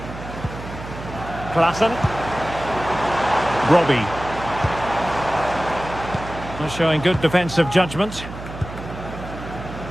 Klaassen. Robbie. Showing good defensive judgment.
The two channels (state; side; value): noise; right; hum, 11 dB below the sound